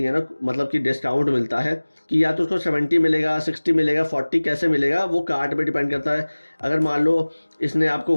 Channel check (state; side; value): inverted; both; correlation -1.00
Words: ना मतलब कि डिस्काउंट मिलता है कि या तो उसको 70 मिलेगा, 60 मिलेगा, 40 कैसे मिलेगा, वो कार्ट पे डिपेंड करता है। अगर मान लो इसने आपको